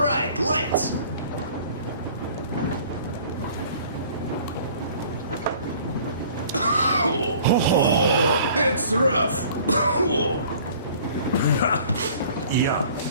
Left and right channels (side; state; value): both; inverted; correlation -0.51